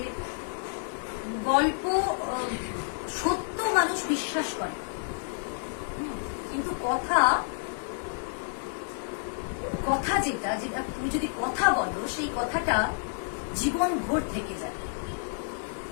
গল্প সত্য মানুষ বিশ্বাস করে, কিন্তু কথা যেটা তুমি যদি কথা বলো সেই কথাটা জীবন ভোর থেকে যায়।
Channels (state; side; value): silent; right; digital silence